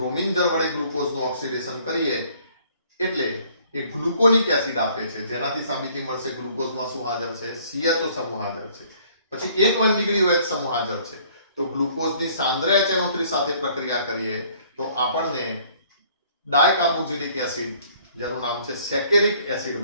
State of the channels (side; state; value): both; inverted; correlation -0.58